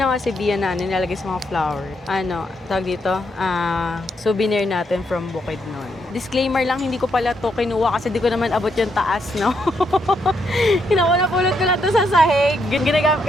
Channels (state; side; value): normal; both; correlation 0.77